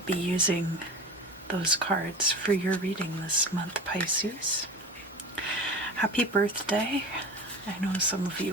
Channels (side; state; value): both; normal; correlation 0.33